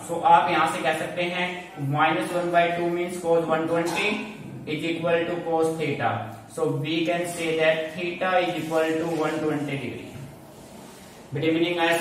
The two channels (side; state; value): both; identical; correlation 1.00